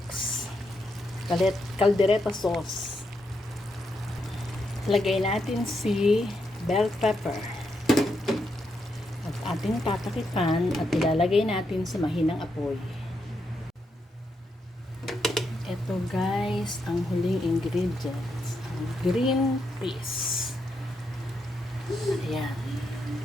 Caldereta sauce. Lagay natin si bell pepper. At ating tatakipan at ilalagay natin sa mahinang apoy. Ito guys, ang huling ingredients. Ang green peas. Ayan.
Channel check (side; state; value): both; normal; correlation 0.81